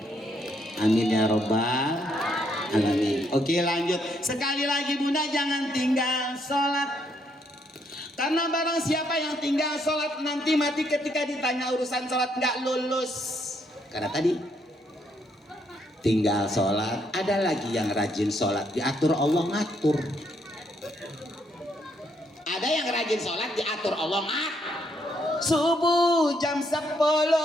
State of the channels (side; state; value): both; normal; correlation 0.73